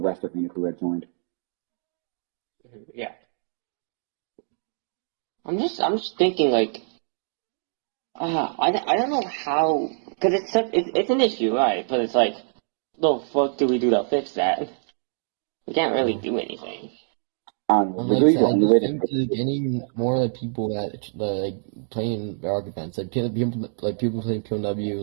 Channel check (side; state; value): left; silent; digital silence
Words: rest of Weedapu had joined. Yeah. I'm just thinking I don't know how, because it's an issue, right? But it's the fuck do we do to fix that? We can't really do anything. Getting more people that playing Bedrock events, people playing